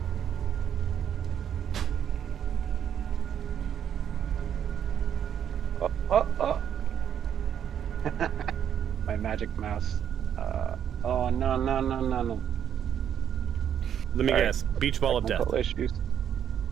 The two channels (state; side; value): quieter; left; 9.2 dB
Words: Oh. My magic mouse. Oh, no. Let me guess. Beach ball of death. Technical issues.